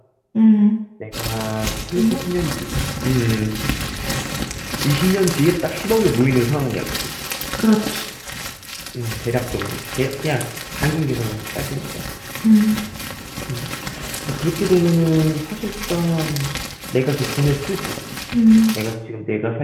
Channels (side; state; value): both; identical; correlation 1.00